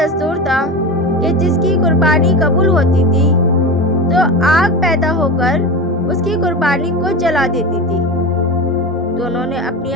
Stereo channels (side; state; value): both; normal; correlation 0.25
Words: تھا کہ جس کی قربانی قبول ہوتی تھی تو آگ پیدا ہو کر اس کی قربانی کو جلا دیتی تھی۔ دونوں نے اپنی